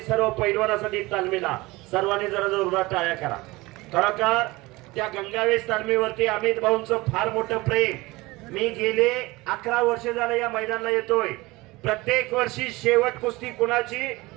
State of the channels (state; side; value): quieter; left; 21.5 dB